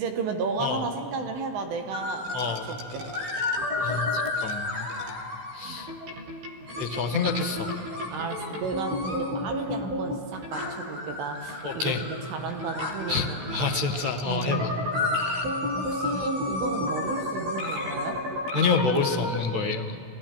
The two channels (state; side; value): late; left; 16 ms